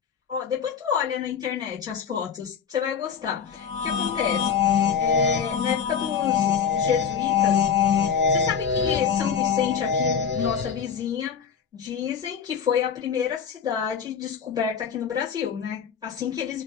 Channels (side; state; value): right; quieter; 7.2 dB